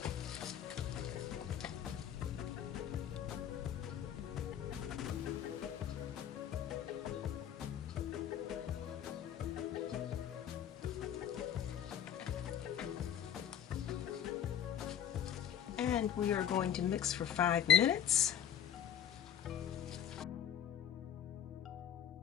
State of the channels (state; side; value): quieter; right; 9.6 dB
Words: And we are going to mix for 5 minutes.